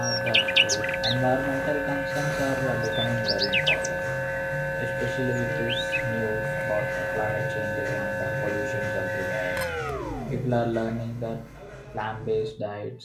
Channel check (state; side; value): identical; both; correlation 1.00